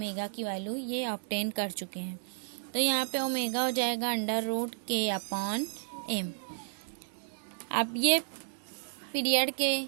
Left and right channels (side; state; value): left; silent; digital silence